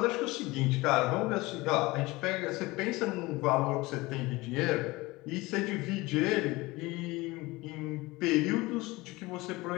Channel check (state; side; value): quieter; right; 21.6 dB